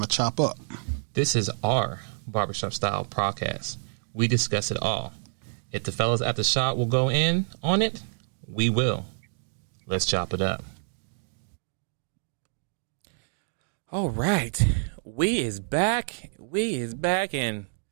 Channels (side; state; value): left; silent; digital silence